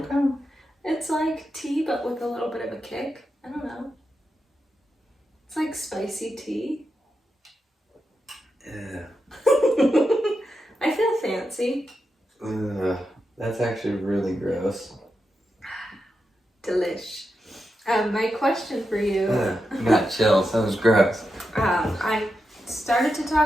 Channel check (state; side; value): normal; both; correlation 0.88